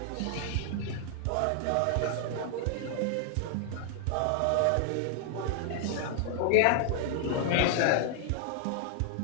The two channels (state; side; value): different; both; correlation 0.00